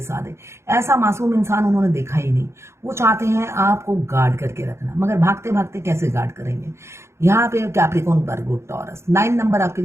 ऐसा मासूम इंसान उन्होंने देखा ही नहीं। वो चाहते हैं आपको गार्ड करके रखना, मगर भागते भागते कैसे गार्ड करेंगे। यहाँ पे कैप्रिकॉर्न, वर्गो, टॉरस 9 नंबर आपके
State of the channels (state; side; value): late; left; 0.13 ms